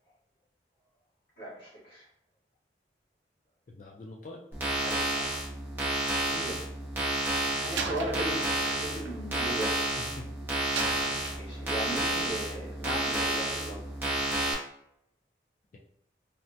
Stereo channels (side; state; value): both; normal; correlation 0.36